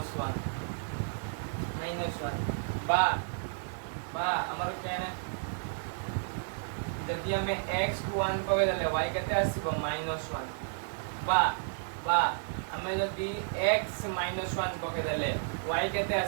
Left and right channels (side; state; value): left; silent; digital silence